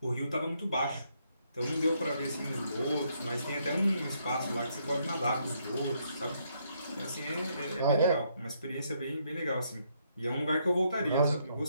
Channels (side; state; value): both; inverted; correlation -0.73